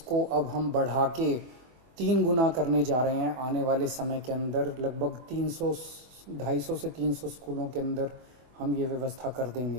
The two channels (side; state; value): left; late; 24 ms